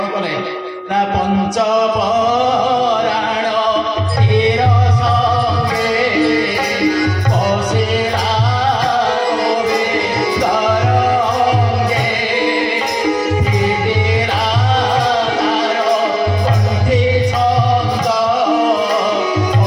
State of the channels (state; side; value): identical; both; correlation 1.00